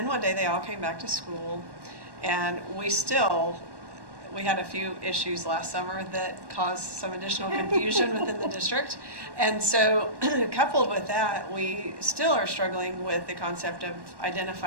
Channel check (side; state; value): left; late; 1.1 ms